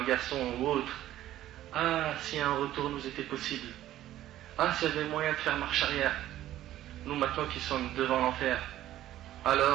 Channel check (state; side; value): quieter; left; 13.5 dB